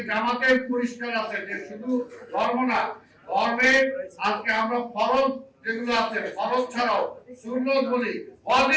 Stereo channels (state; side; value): identical; both; correlation 1.00